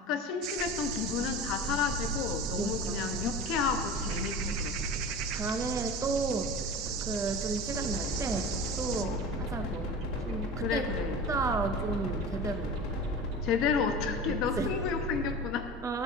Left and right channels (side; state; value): both; normal; correlation 0.33